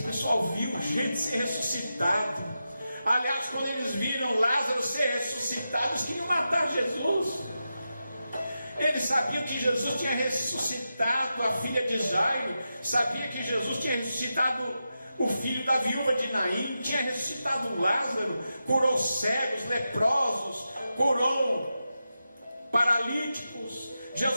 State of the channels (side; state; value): both; inverted; correlation -0.90